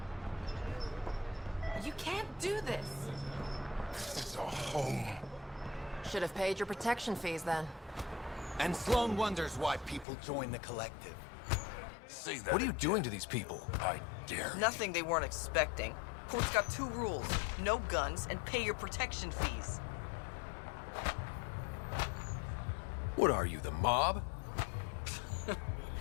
You can't do this. This is a home. Should have paid your protection fees then. And Sloan wonders why people join the collective. Say that. What are you doing to these people? I dare. Nothing they weren't expecting. Port's got 2 rules. No guns and pay your protection fees. What are you, the mob?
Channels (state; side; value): drops out; right; at 10.1 s